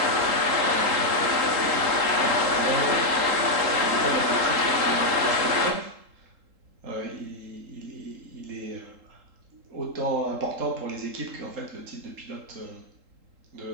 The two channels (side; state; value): left; late; 3.8 ms